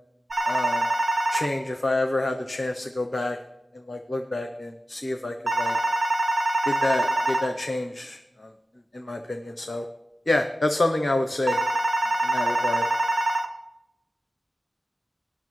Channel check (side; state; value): both; normal; correlation 0.93